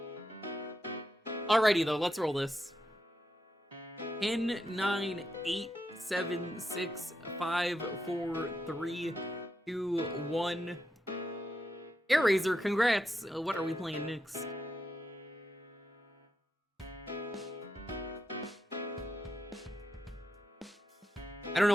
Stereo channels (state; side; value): normal; both; correlation 0.84